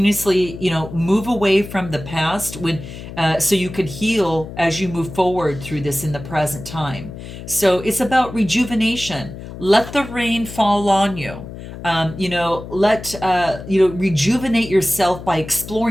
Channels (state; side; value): noise; left; hum, 12 dB below the sound